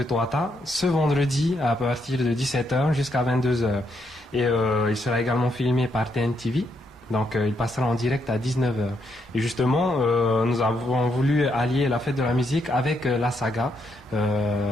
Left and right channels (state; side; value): normal; both; correlation 0.77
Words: Toata, ce vendredi à partir de 17h jusqu'à 22h. Et il sera également filmé par TNTV. Donc il passera en direct à 19h. Et justement, nous avons voulu allier la fête de la musique avec la saga